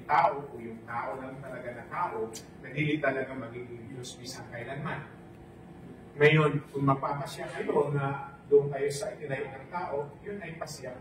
tao o yung tao lang talaga na tao na hindi talaga magiging Diyos bisang kailanman. Ngayon, kung magpapasya kayo na doon kayo sa itinayo ng tao, yun ay pasya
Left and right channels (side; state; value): both; identical; correlation 1.00